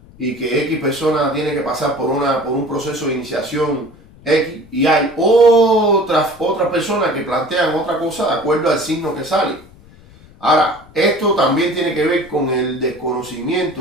y que X persona tiene que pasar por un proceso de iniciación X, y hay otras personas que plantean otra cosa de acuerdo al signo que sale. Ahora, esto también tiene que ver con el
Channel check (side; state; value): left; noise; rumble, 24 dB below the sound